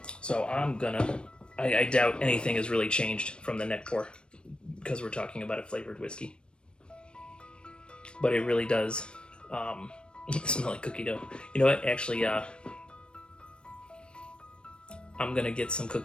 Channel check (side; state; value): right; late; 0.055 ms